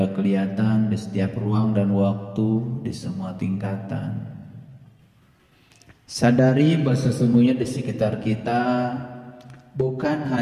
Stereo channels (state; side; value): identical; both; correlation 1.00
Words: kelihatan, di setiap ruang dan waktu, di semua tingkatan. Sadari bahwa sesungguhnya di sekitar kita bukan